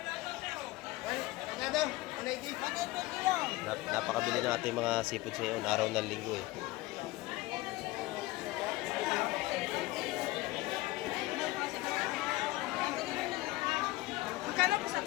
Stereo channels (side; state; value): right; quieter; 19.5 dB